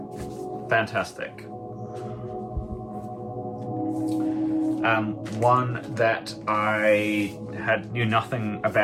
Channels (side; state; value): both; identical; correlation 1.00